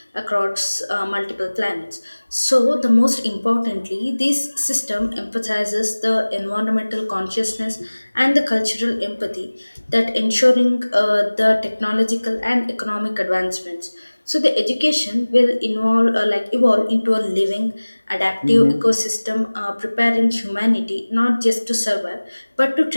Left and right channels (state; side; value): inverted; both; correlation -1.00